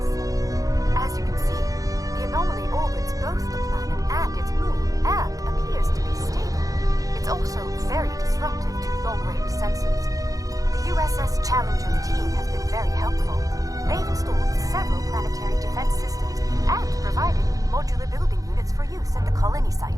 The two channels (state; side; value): late; left; 0.17 ms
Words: As you can see, the anomaly orbits both the planet and its moon, and appears to be stable. It's also very disruptive to long-range sensors. The USS Challenger team has been very helpful. They've installed several planetary defense systems and provided modular building units for use at the colony